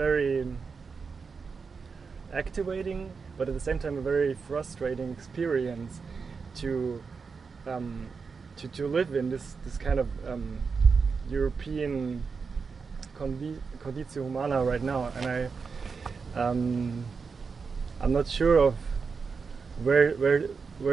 activating, but at the same time a very frustrating experience to live in this kind of European conditio humana right now, and I'm not sure of where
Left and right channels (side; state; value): left; quieter; 5.2 dB